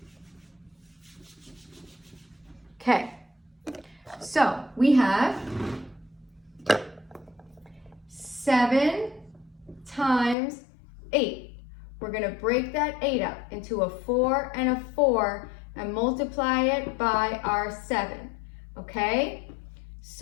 Okay, so we have 7 times 8. We're going to break that 8 up into a 4 and a 4 and multiply it by our 7. Okay,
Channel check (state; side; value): drops out; right; at 10.4 s